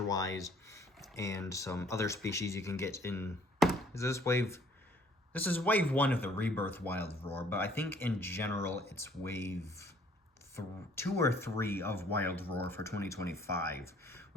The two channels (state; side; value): normal; both; correlation 0.59